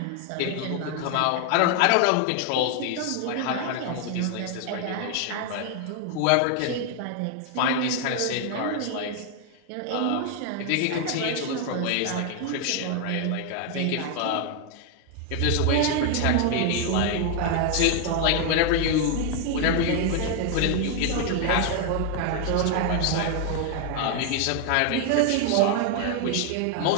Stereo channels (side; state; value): both; different; correlation 0.00